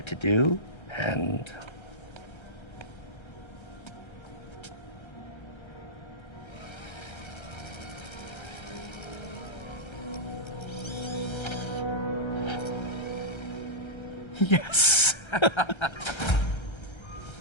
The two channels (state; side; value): late; right; 1.3 ms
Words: to do, and... Yes.